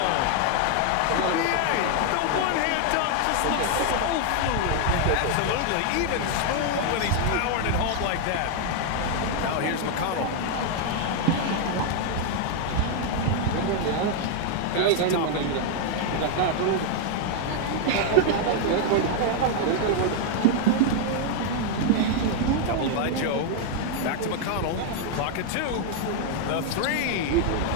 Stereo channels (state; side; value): different; both; correlation 0.00